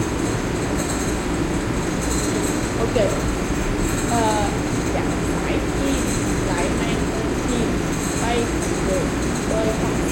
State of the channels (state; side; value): identical; both; correlation 1.00